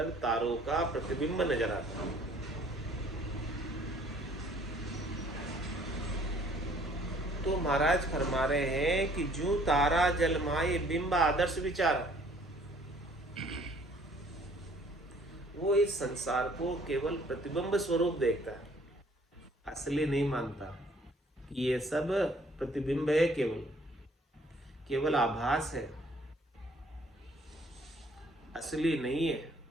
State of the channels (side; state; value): both; normal; correlation 0.59